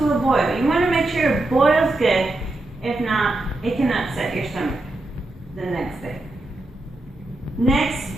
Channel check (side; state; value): both; normal; correlation 0.87